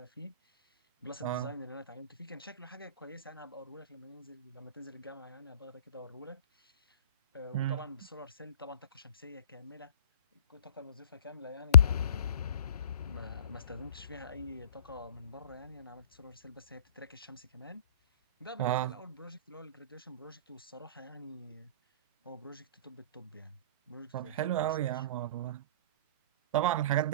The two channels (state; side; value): inverted; both; correlation -0.47